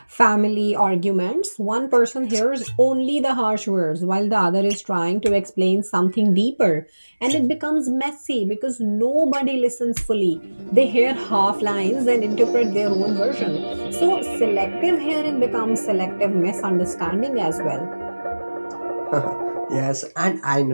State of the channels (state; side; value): inverted; both; correlation -1.00